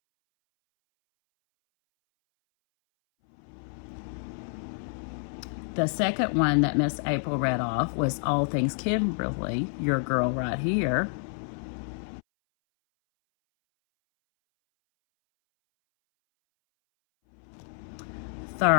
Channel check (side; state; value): right; silent; 59 dB below the other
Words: The second one that Miss April read off was All Things Kimberly, your girl right here.